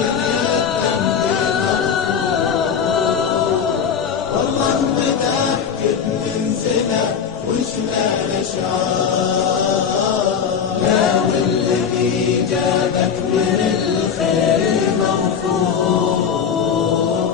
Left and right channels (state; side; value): quieter; right; 7.2 dB